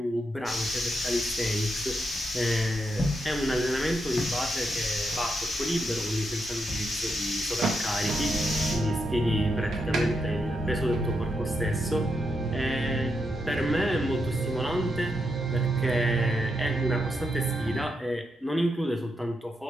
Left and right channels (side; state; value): both; normal; correlation 0.83